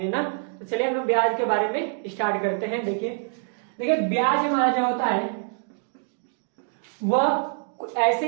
ना। तो चलिए हम लोग ब्याज के बारे में स्टार्ट करते हैं। देखिए ब्याज हमारा जो होता है वह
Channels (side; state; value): left; silent; 55 dB below the other